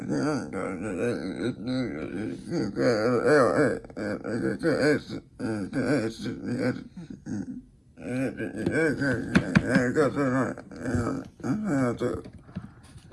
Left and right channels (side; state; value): both; identical; correlation 1.00